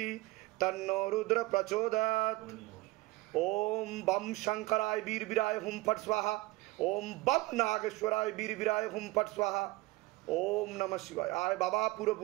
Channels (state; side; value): quieter; left; 20.7 dB